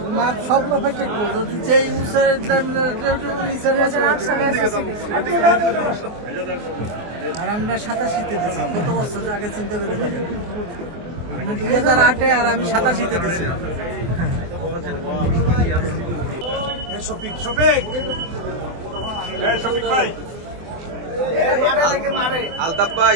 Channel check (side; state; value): left; late; 24 ms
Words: মাপ সব পারফেক্ট যদি যেই নিচের আর আমরা 87তে দিচ্ছি কত বছর আগে চিন্তা করে দেখেন আপনি 2008-এ আর আমি 87তে দিচ্ছি মাঠে থেকে মাঠে আলতাফ